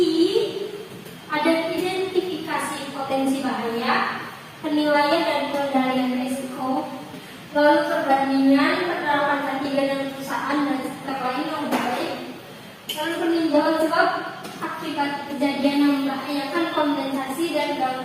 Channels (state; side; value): identical; both; correlation 1.00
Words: ada identifikasi potensi bahaya, penilaian dan pengendalian risiko, lalu perbandingan penerapan K3 dan perusahaan dan sektor lain yang baik, lalu peninjauan sebab akibat kejadian yang membahayakan kompensasi dan